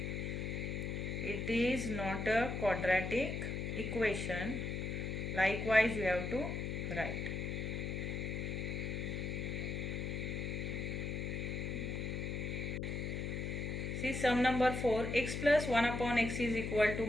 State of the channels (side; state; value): left; noise; hum, 2 dB below the sound